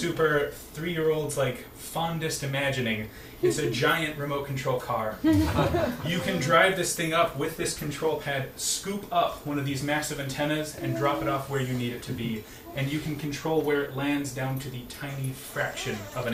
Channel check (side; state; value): both; identical; correlation 1.00